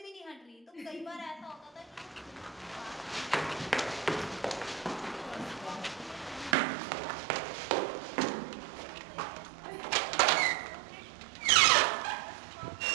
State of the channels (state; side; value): drops out; left; at 6.6 s